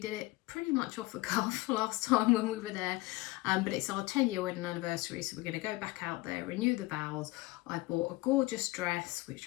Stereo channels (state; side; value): quieter; right; 20.7 dB